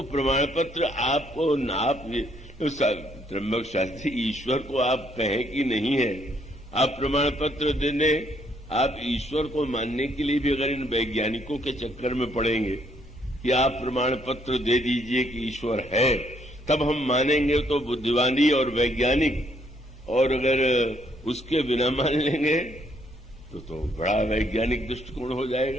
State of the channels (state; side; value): normal; both; correlation 0.69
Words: प्रमाण पत्र आपको आप त्र्यंबक शास्त्री ईश्वर को आप कहें कि नहीं है, आप प्रमाण पत्र देने, आप ईश्वर को मानने के लिए भी अगर इन वैज्ञानिकों के चक्कर में पड़ेंगे कि आप प्रमाण पत्र दे दीजिए कि ईश्वर है, तब हम मानेंगे तो बुद्धिमानी और वैज्ञानिक, और अगर उसके बिना मान लेंगे तो बड़ा वैज्ञानिक दृष्टिकोण हो